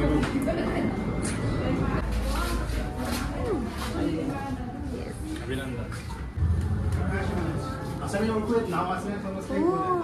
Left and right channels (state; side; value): identical; both; correlation 1.00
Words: अभिनंदन. असं मी ओळखू येत नाव